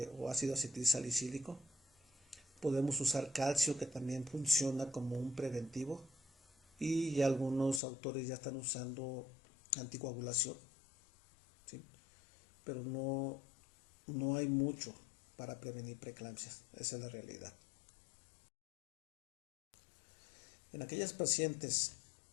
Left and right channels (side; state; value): right; drops out; at 7.8 s